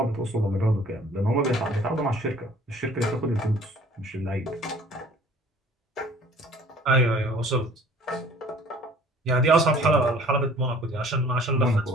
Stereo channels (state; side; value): normal; both; correlation 0.52